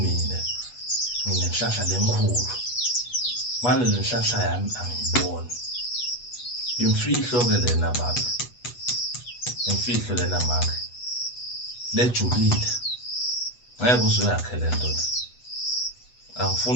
mina nginenhlanhla lenkulu manje lenhlanhla yami angiyiboni imfihlo ke lena baba imfihlo lena manje lejulile ngeke uze uyakhe lento le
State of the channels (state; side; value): late; right; 8.2 ms